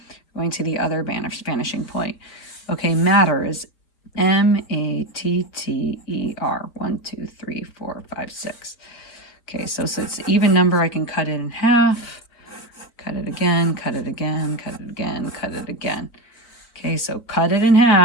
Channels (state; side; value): late; right; 4.5 ms